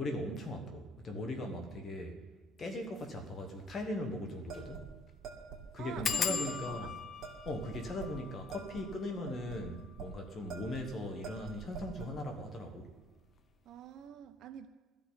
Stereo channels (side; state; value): both; normal; correlation 0.61